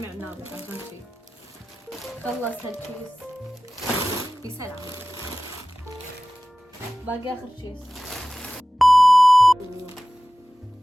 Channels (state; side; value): normal; both; correlation 0.97